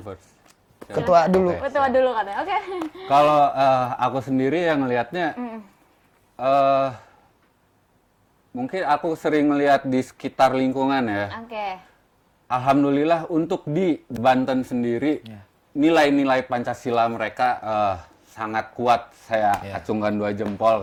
Ketua dulu. Ketua dulu katanya. Oke. Kalau aku sendiri yang ngelihatnya, mungkin aku sering melihat di sekitar lingkungan ya. Oke. Alhamdulillah untuk di Banten sendiri, nilai-nilai Pancasila mereka sangat kuat. Saya acungkan 2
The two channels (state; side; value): identical; both; correlation 1.00